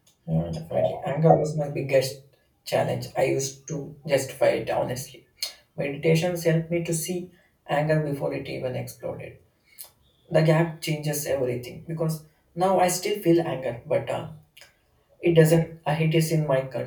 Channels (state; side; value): identical; both; correlation 1.00